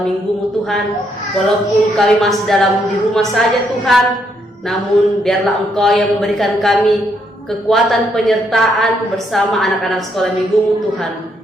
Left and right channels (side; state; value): both; normal; correlation 0.74